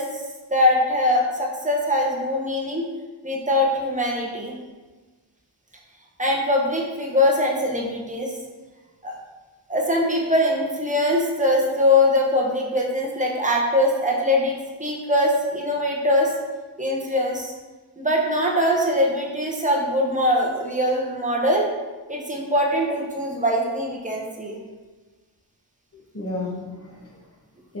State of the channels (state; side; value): normal; both; correlation -0.08